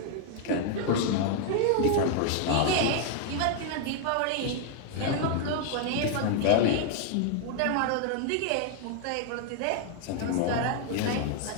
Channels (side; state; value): both; different; correlation 0.00